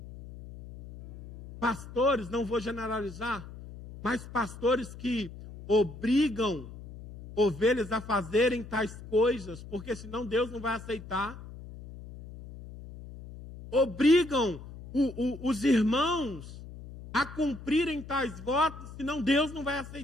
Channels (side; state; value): left; noise; hum, 14 dB below the sound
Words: Pastores, não vou generalizar, mas pastores que obrigam ovelhas a fazerem tais coisas, porque senão Deus não vai aceitar. Obrigam os irmãos a cumprirem tais votos, senão Deus não vai